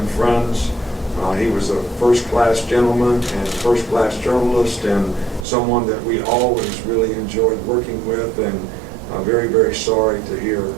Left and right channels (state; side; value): drops out; left; at 5.5 s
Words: friends. He was a first-class gentleman and first-class journalist, and someone that we always really enjoyed working with, and very, very sorry to hear,